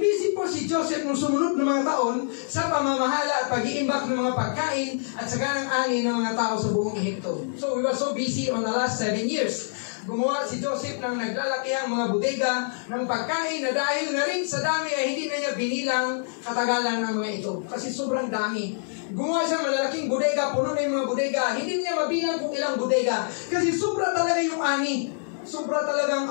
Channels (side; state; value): right; silent; digital silence